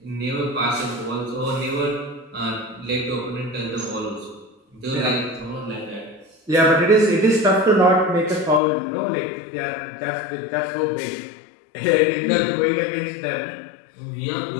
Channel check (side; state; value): right; drops out; at 8.6 s